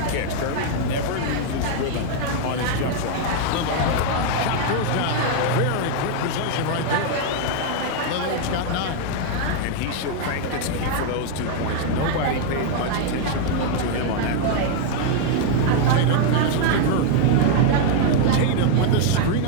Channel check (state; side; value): different; both; correlation 0.00